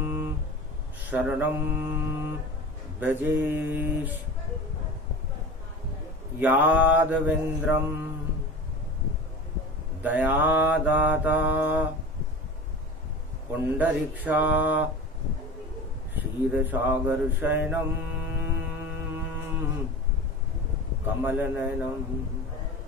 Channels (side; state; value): both; normal; correlation 0.34